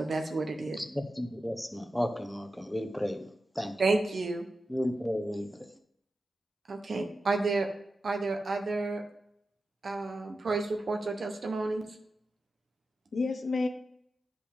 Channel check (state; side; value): normal; both; correlation 0.91